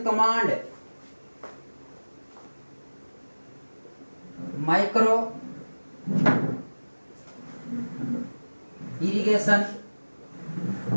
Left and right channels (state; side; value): inverted; both; correlation -1.00